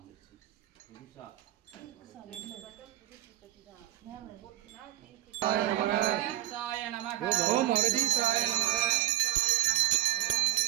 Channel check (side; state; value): left; quieter; 14.9 dB